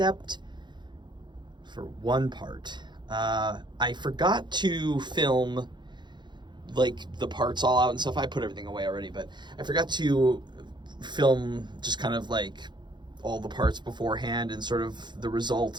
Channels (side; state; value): left; late; 0.22 ms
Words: for one part. I forgot to film like the parts all out and stuff. I put everything away already, but I forgot to film just kind of like all the parts beforehand and sort of the